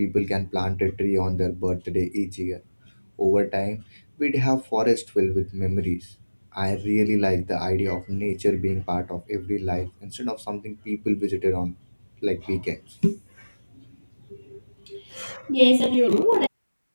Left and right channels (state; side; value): inverted; both; correlation -1.00